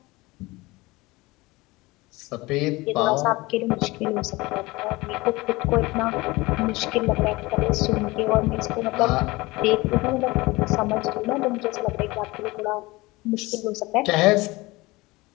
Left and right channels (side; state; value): right; quieter; 21.8 dB